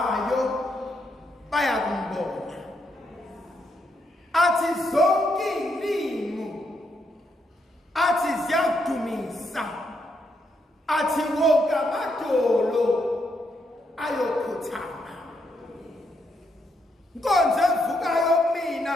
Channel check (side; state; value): both; normal; correlation 0.78